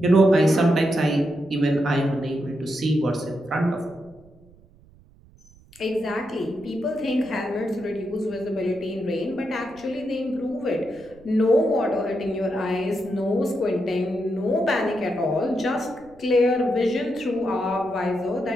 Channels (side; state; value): right; noise; rumble, 26 dB below the sound